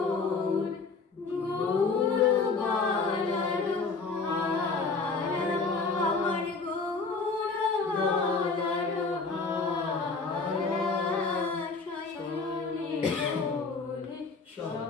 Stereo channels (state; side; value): quieter; right; 4.3 dB